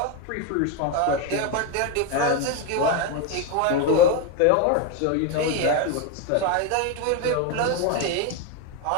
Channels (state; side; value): different; both; correlation 0.02